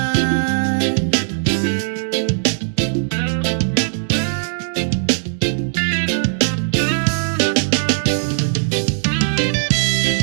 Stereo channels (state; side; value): silent; left; digital silence